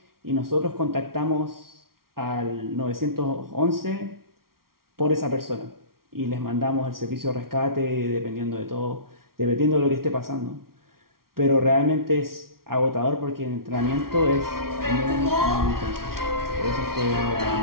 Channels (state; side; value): late; left; 0.93 ms